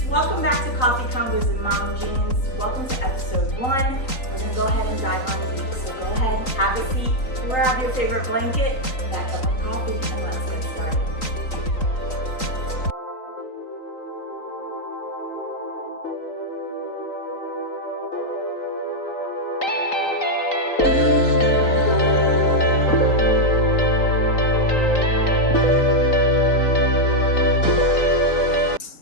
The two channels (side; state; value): right; late; 3.9 ms